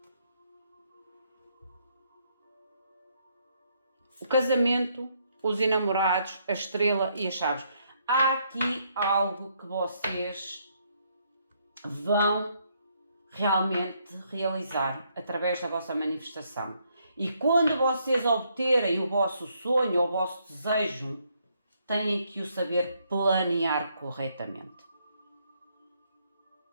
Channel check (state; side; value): inverted; both; correlation -0.73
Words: O casamento, os enamorados, a estrela e as chaves. Há aqui algo que vocês vão realmente realizar através da vossa manifestação. E quando vocês obterem o vosso sonho, o vosso desejo, têm que o saber planear corretamente.